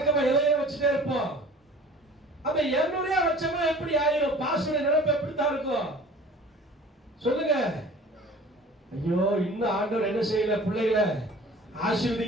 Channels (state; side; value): normal; both; correlation 0.45